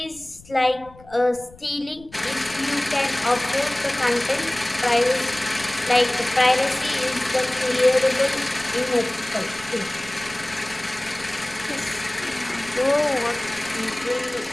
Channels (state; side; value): noise; left; rumble, 23 dB below the sound